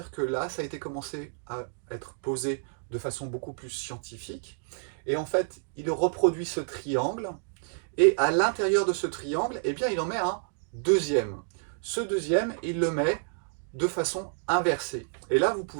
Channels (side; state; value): left; silent; digital silence